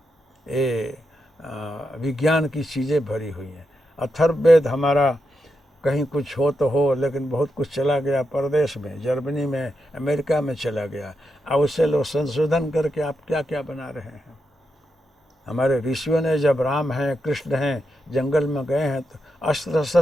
ये विज्ञान की चीज़ें भरी हुई हैं। अथर्ववेद हमारा कहीं कुछ हो तो हो, लेकिन बहुत कुछ चला गया परदेश में, जर्मनी में, अमेरिका में चला गया। अब उससे लोग संशोधन करके आप क्या क्या बना रहे हैं। हमारे ऋषियों ने जब राम हैं, कृष्ण हैं, जंगल में गए हैं तो अस्त्र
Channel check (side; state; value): both; normal; correlation 0.85